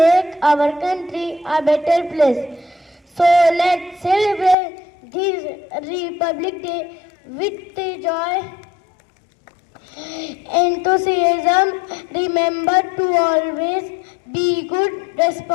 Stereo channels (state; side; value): drops out; right; at 4.5 s